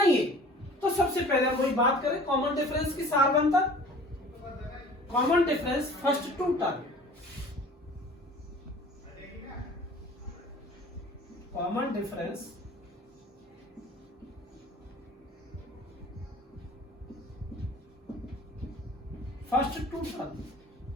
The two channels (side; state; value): both; normal; correlation 0.46